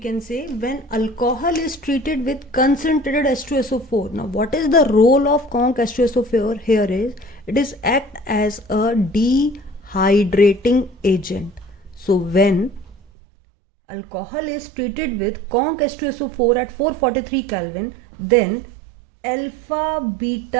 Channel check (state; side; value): drops out; left; at 13.0 s